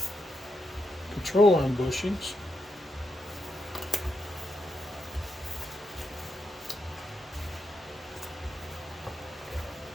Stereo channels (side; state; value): both; normal; correlation 0.84